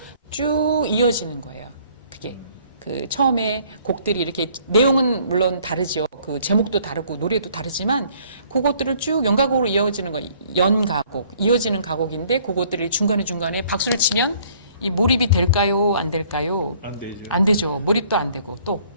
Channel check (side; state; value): both; inverted; correlation -0.60